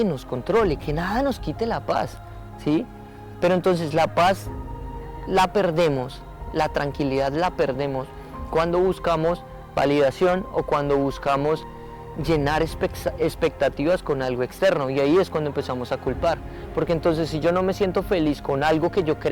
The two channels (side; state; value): both; identical; correlation 1.00